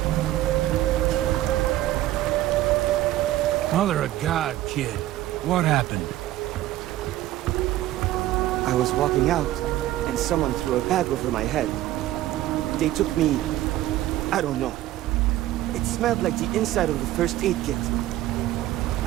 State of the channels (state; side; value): quieter; left; 14.8 dB